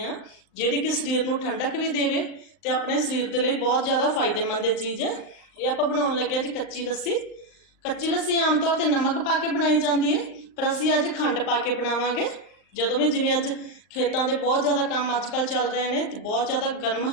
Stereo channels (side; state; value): right; late; 39 ms